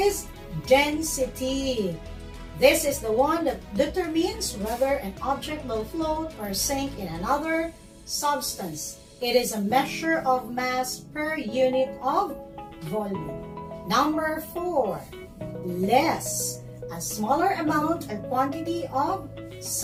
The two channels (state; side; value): identical; both; correlation 1.00